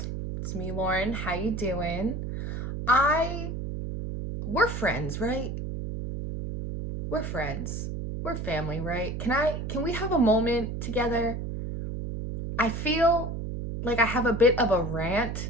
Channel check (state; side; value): noise; right; hum, 5 dB below the sound